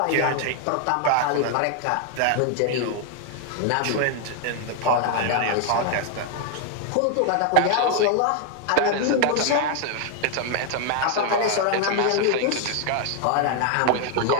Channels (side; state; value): both; different; correlation 0.00